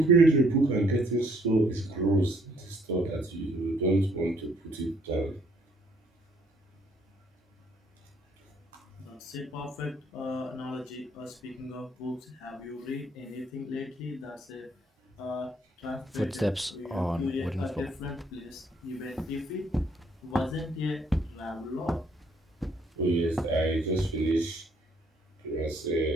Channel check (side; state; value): both; normal; correlation 0.65